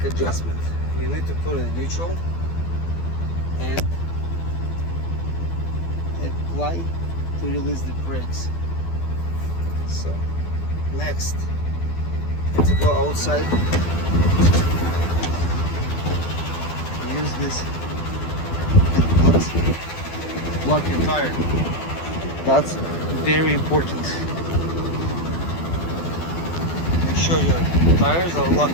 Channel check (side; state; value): right; late; 12 ms